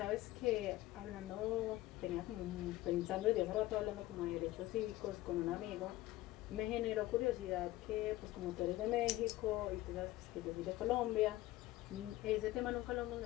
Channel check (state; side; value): quieter; right; 16.7 dB